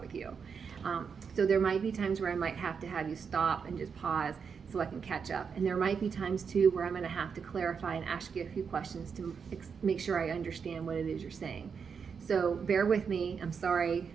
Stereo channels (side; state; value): left; quieter; 6.2 dB